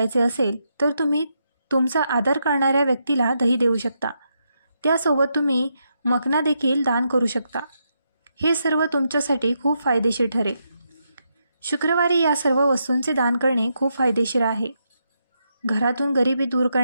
असेल तर तुम्ही तुमचा आदर करणाऱ्या व्यक्तीला दही देऊ शकता. त्यासोबत तुम्ही मखना देखील दान करू शकता. हे सर्व तुमच्यासाठी खूप फायदेशीर ठरेल. शुक्रवारी या सर्व वस्तूंचे दान करणे खूप फायदेशीर आहे. घरातून गरिबी दूर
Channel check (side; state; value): both; inverted; correlation -0.82